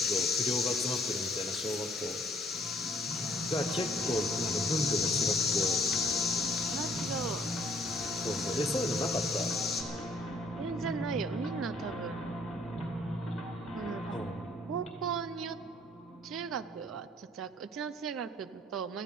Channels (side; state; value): both; normal; correlation 0.61